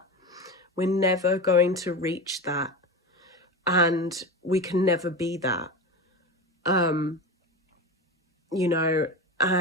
we're never going to reach that, and we can never be that. You know,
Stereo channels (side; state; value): both; normal; correlation 0.24